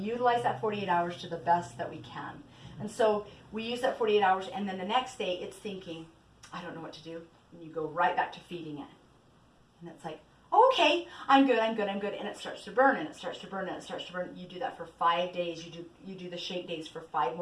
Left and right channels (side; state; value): both; identical; correlation 1.00